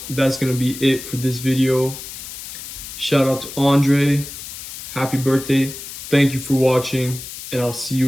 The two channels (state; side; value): noise; left; hiss, 11 dB below the sound